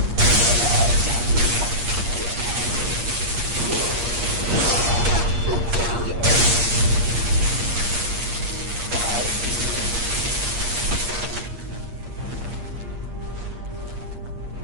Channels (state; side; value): late; left; 8.5 ms